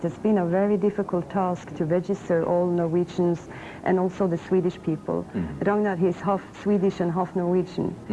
has been a very difficult task to register all Norwegians and also the Swedish people. Ragnar, he is half Swedish and half Norwegian.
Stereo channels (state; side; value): identical; both; correlation 1.00